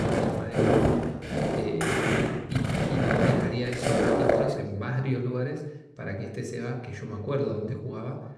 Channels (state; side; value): identical; both; correlation 1.00